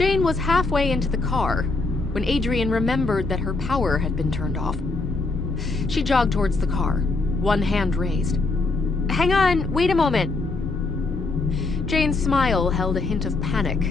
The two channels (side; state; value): right; quieter; 3.6 dB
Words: was halfway into the car when Adrian remembered that her power had been turned off. She jogged towards the car, one hand raised. "Hang on, wait a moment." Jane's smile held a hint of